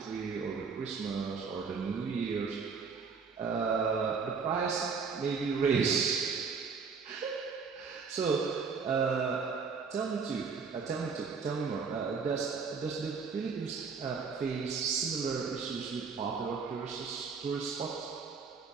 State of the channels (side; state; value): left; quieter; 5.3 dB